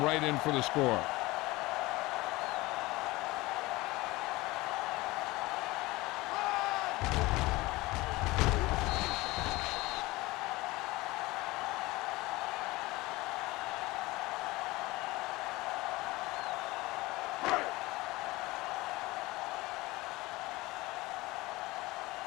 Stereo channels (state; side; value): quieter; right; 20.6 dB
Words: right in for the score.